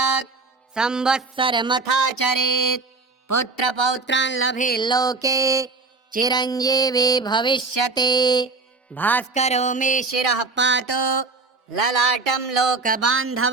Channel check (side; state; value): left; quieter; 3.8 dB